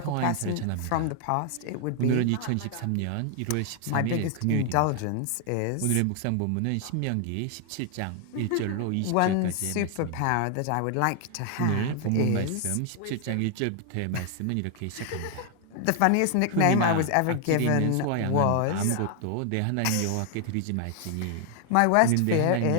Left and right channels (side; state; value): both; different; correlation 0.00